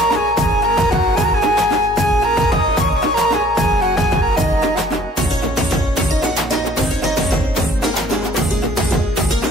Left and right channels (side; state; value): both; normal; correlation 0.57